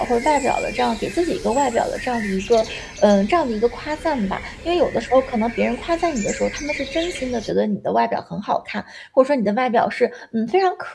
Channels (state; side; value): identical; both; correlation 1.00